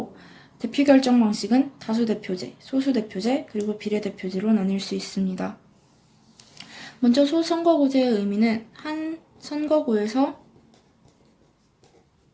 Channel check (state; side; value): identical; both; correlation 1.00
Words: 대표 결정 방식은 다수대표제, 소수대표제, 그리고 비례대표제로 나뉠 수 있습니다. 먼저 소선거구제의 의미는 한 선거구에서